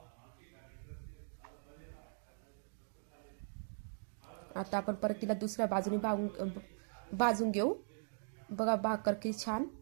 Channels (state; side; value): silent; left; digital silence